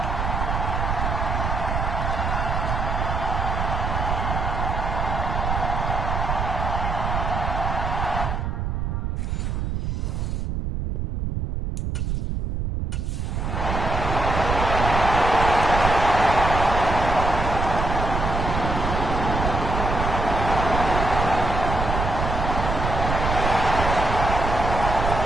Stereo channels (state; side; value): noise; right; rumble, 2 dB below the sound